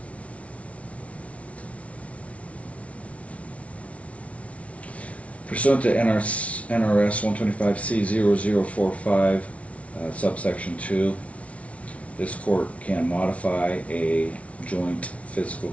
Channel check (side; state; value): right; late; 0.064 ms